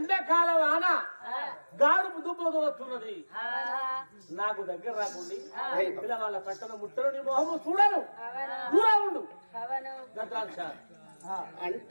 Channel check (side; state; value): both; inverted; correlation -1.00